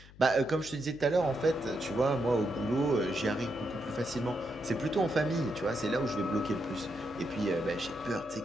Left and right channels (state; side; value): noise; left; hum, 21 dB below the sound